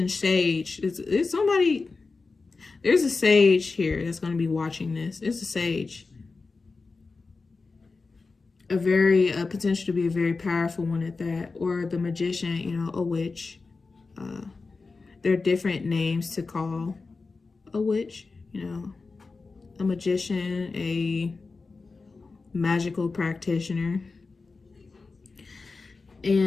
sage. It's somebody... There's a sage here that's going to be watching this. It's a sage. A potential to be a very powerful one at that. Or the magician, you know, a witch. There are different names to call a witch, you know. A magician, a magical practitioner.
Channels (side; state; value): right; quieter; 4.1 dB